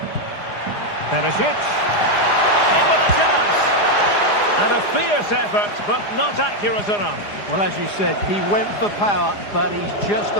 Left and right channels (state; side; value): late; right; 4.9 ms